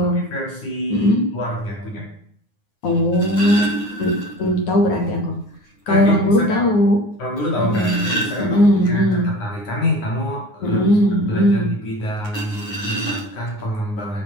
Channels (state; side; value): late; right; 9.6 ms